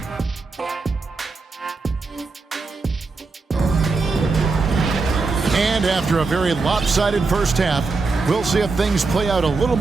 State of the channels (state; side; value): quieter; left; 4.0 dB